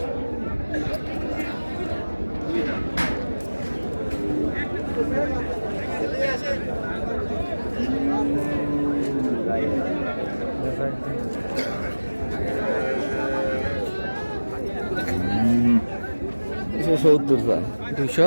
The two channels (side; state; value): both; inverted; correlation -1.00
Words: দুশো 70 চাই।